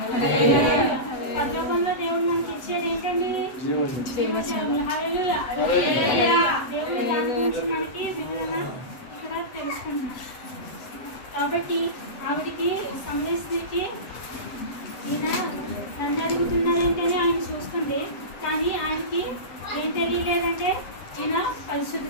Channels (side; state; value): right; late; 7.8 ms